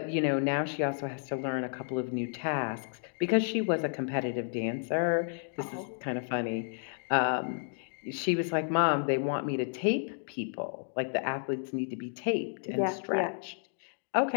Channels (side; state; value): right; silent; digital silence